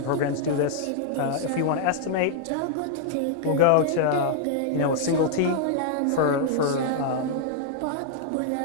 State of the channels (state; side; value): different; both; correlation -0.01